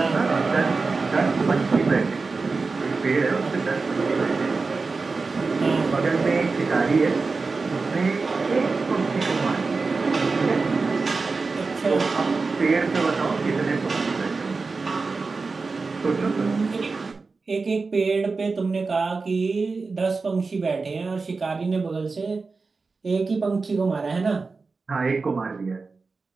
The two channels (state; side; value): quieter; left; 4.2 dB